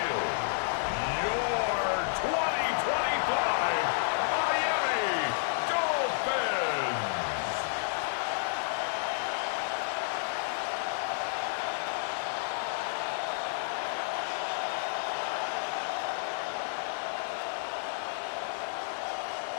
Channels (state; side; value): silent; right; digital silence